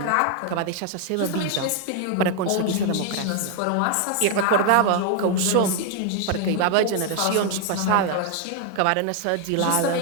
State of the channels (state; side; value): different; both; correlation 0.01